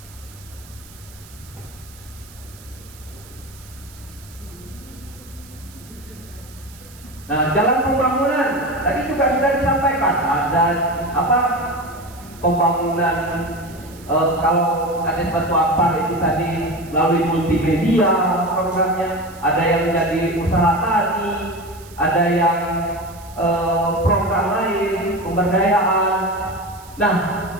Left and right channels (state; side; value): noise; right; hiss, 22 dB below the sound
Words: Nah, jalan pembangunan tadi juga sudah disampaikan. Ada apa? Pembangunan kalau ada Batu Ampar itu tadi melalui multimedia programnya, ada yang jadi usaha tani, ada yang program lain, pemberdayaan. Nah,